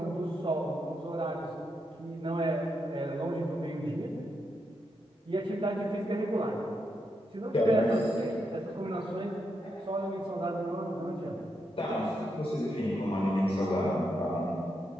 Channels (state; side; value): normal; both; correlation 0.82